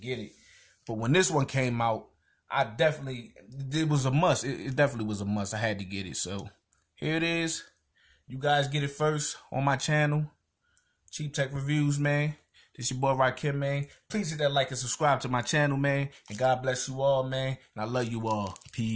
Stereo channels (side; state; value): both; identical; correlation 1.00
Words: it. But when this one came out, it was a must. It definitely was a must. I had to get it. So here it is. You guys get it first on my channel, Cheap Tech Reviews, man. This your boy Rakim, man. Please hit that like and subscribe to my channel, man. And God bless you all, man. And I love you all.